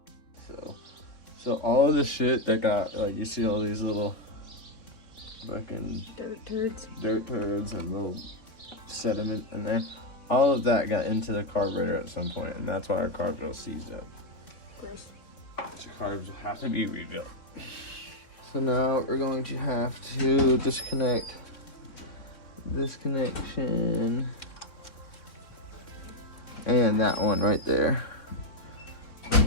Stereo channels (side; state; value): right; late; 3.6 ms